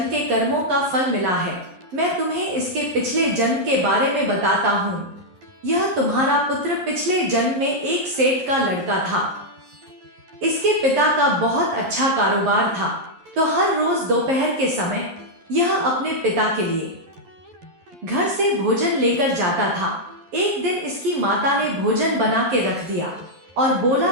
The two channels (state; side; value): late; left; 11 ms